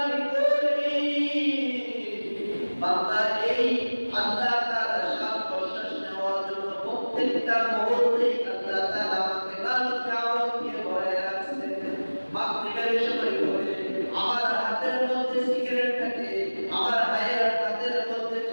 করি। বান্দা এই আল্লাহ তাআলা শ্বাস প্রশ্বাস নেওয়ার জন্য প্রত্যেকটা মুহূর্তে আল্লাহ তাআলা আমাকে লাল নিয়ামত দিয়ে ভরে রাখছে। মাগরিবের সময় করে আমার হাতের মধ্যে সিগারেট থাকে, আমার ভাইয়ের হাতের মধ্যে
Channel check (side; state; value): both; inverted; correlation -1.00